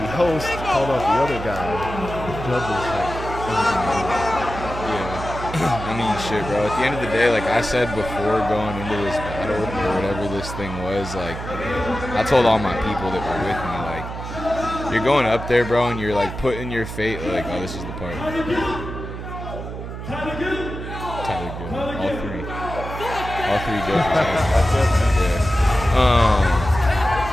host called out the other guy, the judges I mean, shit, bro. At the end of the day, like I said before going into this battle or whatever this thing was, like I told all my people that were with me, like you're going up there, bro, and you're like putting your fate, like, oh, this is the part. Tyler Gill. All three judges.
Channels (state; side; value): noise; right; hum, 8 dB below the sound